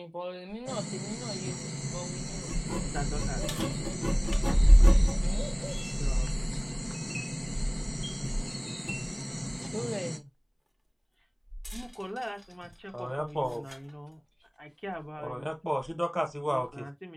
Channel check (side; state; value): both; identical; correlation 1.00